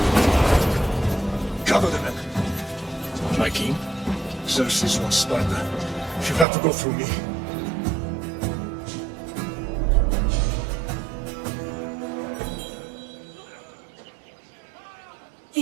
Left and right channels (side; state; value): left; drops out; at 6.5 s